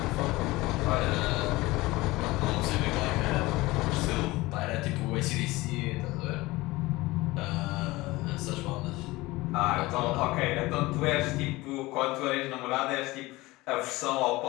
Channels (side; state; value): right; quieter; 20.4 dB